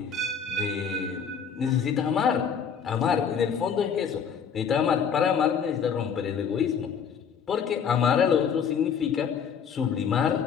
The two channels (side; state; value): right; quieter; 7.0 dB